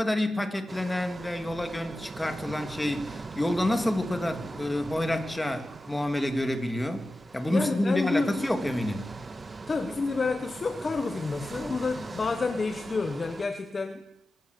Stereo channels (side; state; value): both; normal; correlation 0.94